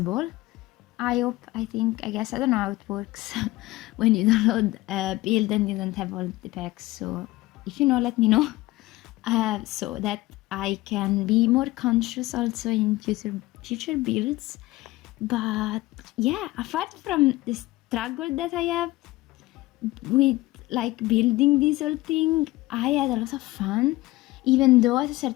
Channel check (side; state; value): right; quieter; 18.9 dB